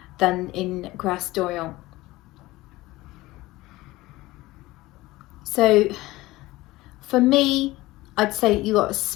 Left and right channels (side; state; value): right; quieter; 18.8 dB